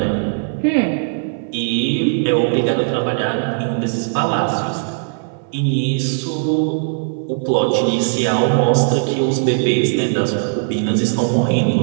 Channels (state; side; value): silent; left; 61 dB below the other